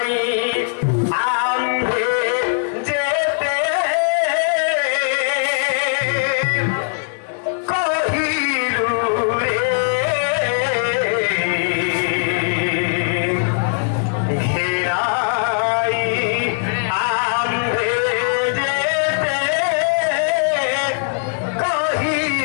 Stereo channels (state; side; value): silent; right; 66 dB below the other